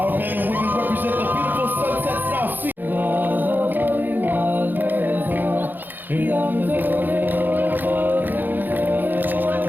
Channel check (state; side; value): late; left; 0.089 ms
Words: men and women represent the beautiful sunsets now seen.